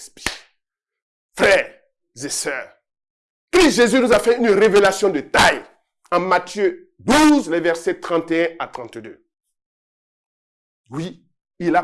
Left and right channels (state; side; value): identical; both; correlation 1.00